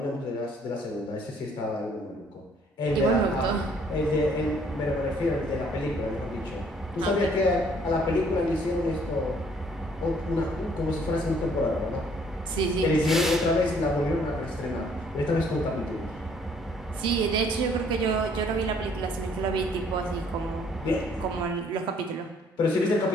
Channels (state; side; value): normal; both; correlation 0.62